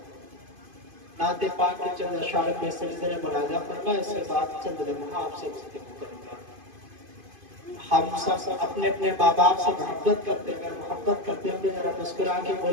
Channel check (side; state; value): left; late; 2.5 ms